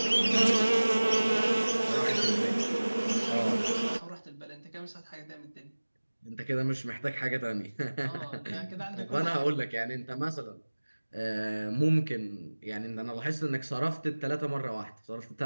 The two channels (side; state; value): both; inverted; correlation -1.00